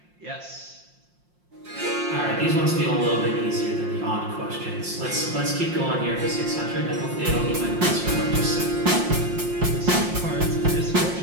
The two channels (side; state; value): left; late; 5.6 ms